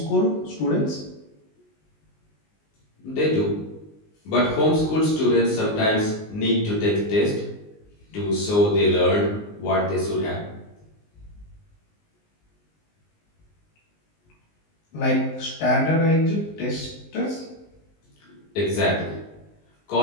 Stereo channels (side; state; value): right; late; 19 ms